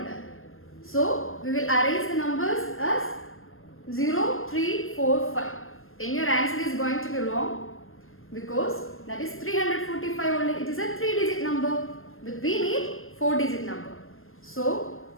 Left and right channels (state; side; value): late; right; 0.60 ms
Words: So, we will arrange the numbers as 0, 3, 4, 5. Then your answer is going to be wrong because that is 345 only. It is a 3-digit number, but we need 4-digit number. So,